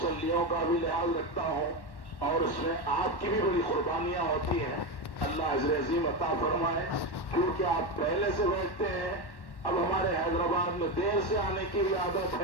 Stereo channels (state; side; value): late; right; 1.1 ms